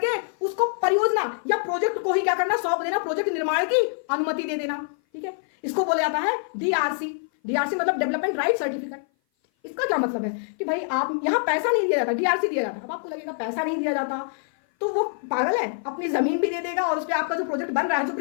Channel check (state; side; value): silent; right; 57 dB below the other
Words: उसको परियोजना या प्रोजेक्ट को ही क्या करना, सौंप देना, प्रोजेक्ट निर्माण की अनुमति दे देना, ठीक है। इसको बोला जाता है डीआरसी मतलब डेवलपमेंट राइट सर्टिफिकेट। इसका क्या मतलब है कि भाई आप यहां पैसा नहीं दिया जाता, डीआरसी दिया जाता। अब आपको लगेगा पैसा नहीं दिया जाता तो वो पागल है, अपनी जमीन भी दे देगा और उस पर आपका जो प्रोजेक्ट बन रहा है, जो